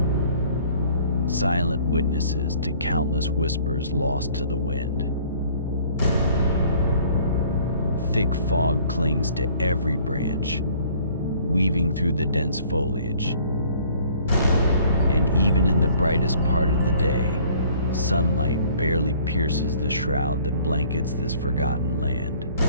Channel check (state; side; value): inverted; both; correlation -0.56